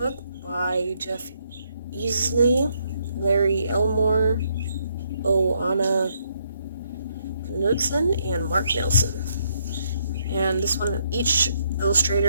by Jeff Easley, Larry Elmore, Anna Knudsen, and Mark Nelson. And this one, each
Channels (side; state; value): both; inverted; correlation -0.73